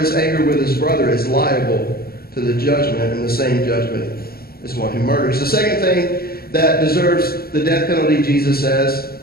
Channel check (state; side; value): late; right; 0.44 ms